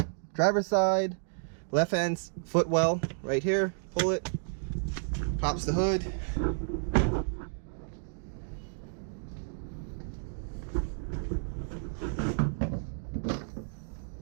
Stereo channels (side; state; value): left; silent; digital silence